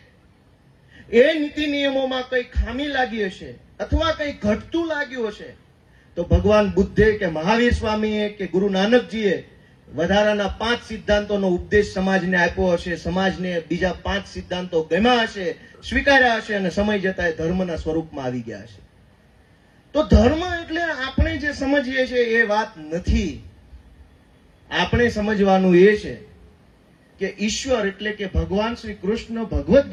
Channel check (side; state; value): both; identical; correlation 1.00